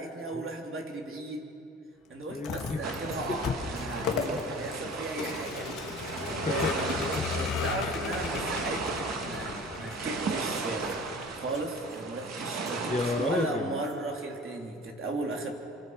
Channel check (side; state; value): both; normal; correlation 0.42